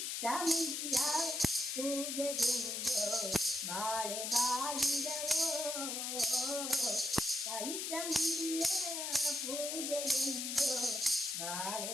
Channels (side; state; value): left; noise; hiss, 2 dB below the sound